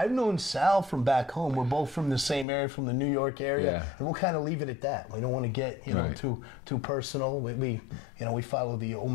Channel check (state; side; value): drops out; right; at 2.5 s